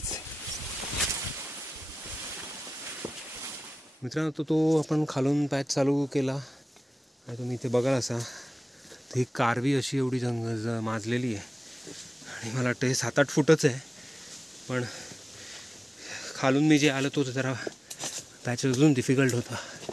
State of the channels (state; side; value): normal; both; correlation 0.96